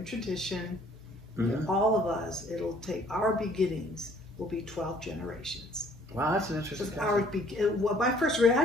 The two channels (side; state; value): both; normal; correlation 0.59